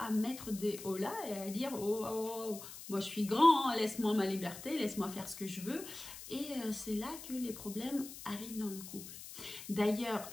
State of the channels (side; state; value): left; noise; hiss, 12 dB below the sound